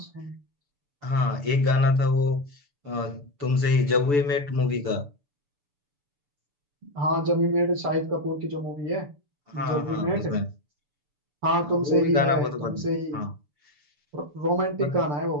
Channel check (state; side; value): late; left; 6.9 ms